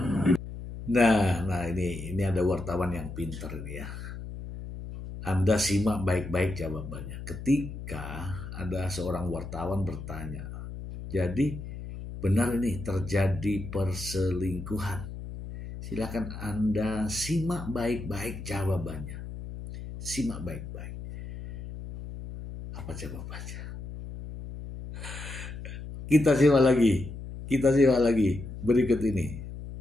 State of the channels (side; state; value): left; noise; hum, 10 dB below the sound